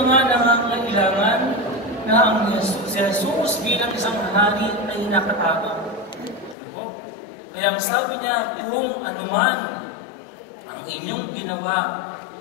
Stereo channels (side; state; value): right; drops out; at 6.6 s